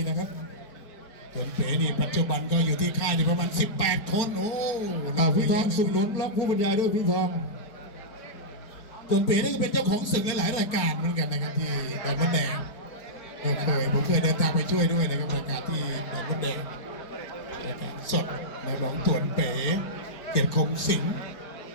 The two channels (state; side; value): late; right; 4.4 ms